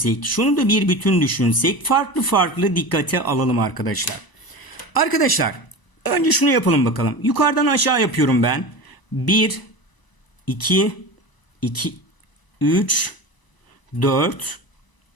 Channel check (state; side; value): late; right; 1.0 ms